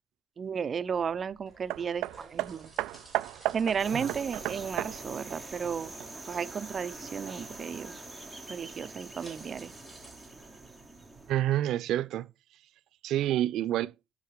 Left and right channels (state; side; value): quieter; left; 8.9 dB